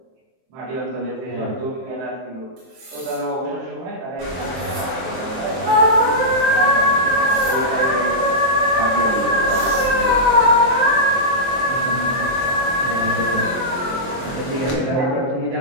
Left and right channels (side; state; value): left; late; 23 ms